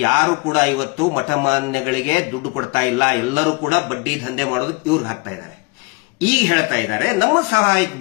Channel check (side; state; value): right; quieter; 28.7 dB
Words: ಯಾರು ಕೂಡ ಇವತ್ತು ಮಠಮಾನ್ಯಗಳಿಗೆ ದುಡ್ಡು ಕೊಡ್ತಾ ಇಲ್ಲ. ಎಲ್ಲರೂ ಕೂಡ ಬಡ್ಡಿ ದಂಧೆ ಮಾಡೋದಕ್ಕೆ ಇವ್ರಿಗೆ ಹಾಕ್ತಾ ಇದ್ದಾರೆ. ಈಗ ಹೇಳ್ತಾ ಇದ್ದಾರೆ ನಮ್ಮ ಸಹಾಯಕ್ಕೆ